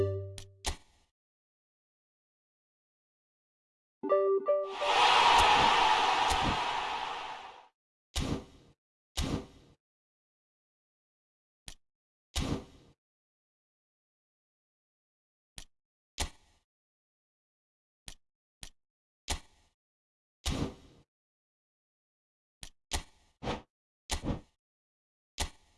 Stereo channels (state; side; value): identical; both; correlation 1.00